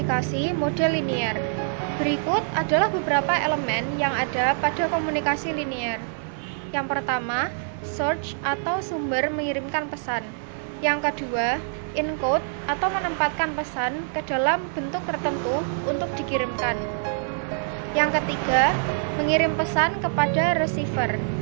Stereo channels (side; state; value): left; silent; digital silence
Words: model linear. Berikut adalah beberapa elemen yang ada pada komunikasi linear. Yang pertama, source atau sumber mengirimkan pesan. Yang kedua, encode atau menempatkan pesan ke dalam bentuk tertentu untuk dikirimkan. Yang ketiga, mengirim pesan kepada receiver.